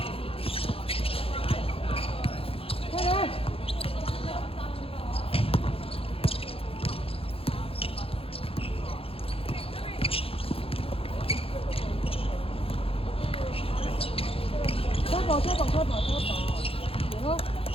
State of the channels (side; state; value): right; late; 0.27 ms